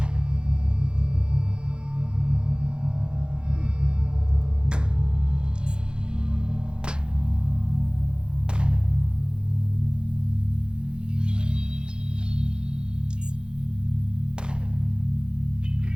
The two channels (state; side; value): late; left; 0.049 ms